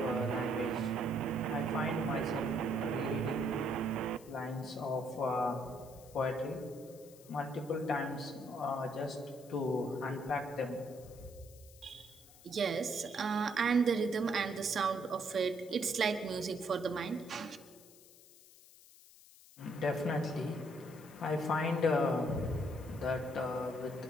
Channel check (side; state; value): left; noise; hiss, 22 dB below the sound